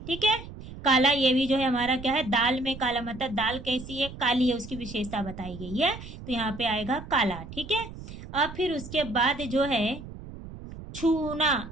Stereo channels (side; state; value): right; noise; rumble, 13 dB below the sound